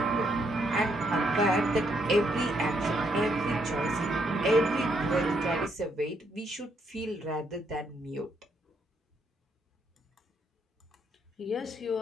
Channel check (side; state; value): both; normal; correlation 0.74